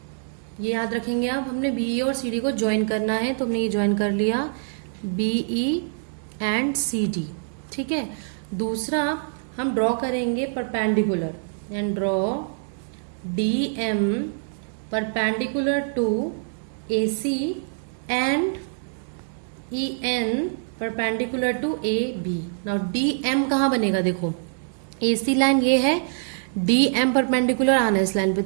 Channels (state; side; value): silent; left; digital silence